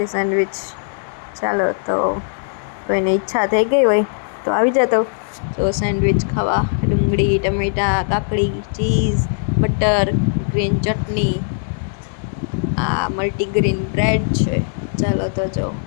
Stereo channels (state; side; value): silent; right; digital silence